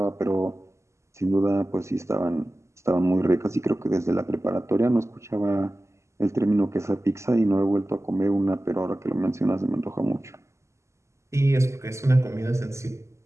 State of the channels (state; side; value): late; left; 0.13 ms